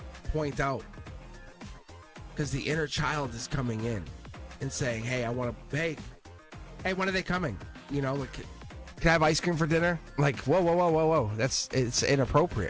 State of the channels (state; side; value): identical; both; correlation 1.00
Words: point out, because the inner child is coming in and saying, hey, I want to, hey, when are they coming? You know, like, can I have ice cream for dinner? Like, whoa, it's